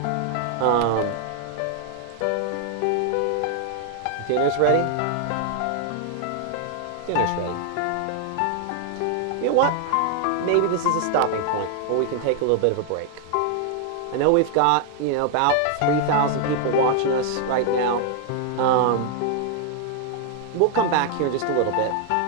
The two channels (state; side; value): different; both; correlation 0.00